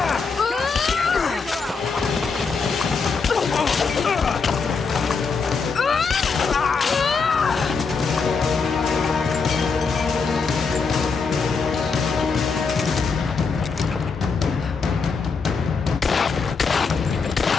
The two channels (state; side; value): quieter; right; 5.0 dB